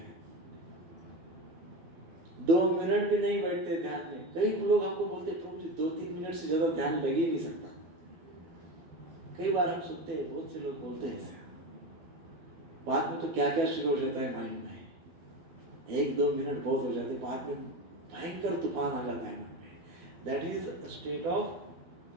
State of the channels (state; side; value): late; left; 12 ms